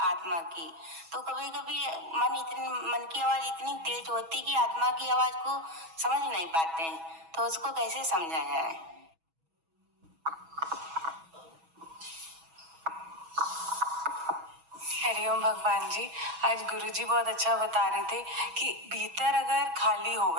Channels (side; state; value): left; late; 6.2 ms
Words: की। तो कभी कभी मन की आवाज इतनी तेज होती कि आत्मा की आवाज को समझ नहीं पाते हैं, तो उसको कैसे समझा जाए? हरिओम भगवान जी। आज गुरुजी बहुत अच्छा बता रहे थे कि भीतर अगर खाली